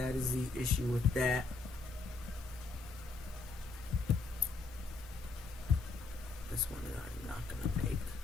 is the issue with that. This one I'm not gonna make.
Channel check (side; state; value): right; quieter; 3.9 dB